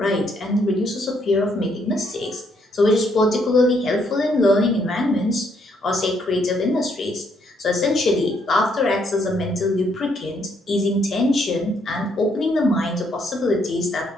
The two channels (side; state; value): both; normal; correlation 0.72